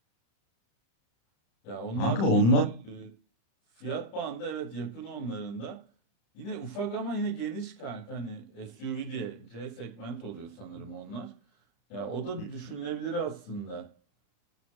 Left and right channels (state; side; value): late; right; 35 ms